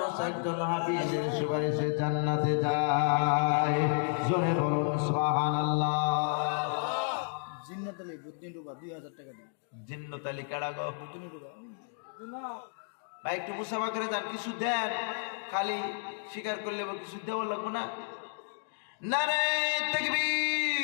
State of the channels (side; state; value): right; silent; digital silence